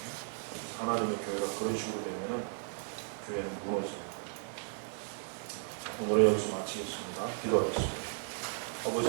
하나님의 교회가 그런 식으로 되면은 교회는 무너져요. 오늘의 여기서 마치겠습니다. 기도하겠습니다.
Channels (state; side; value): silent; left; 54 dB below the other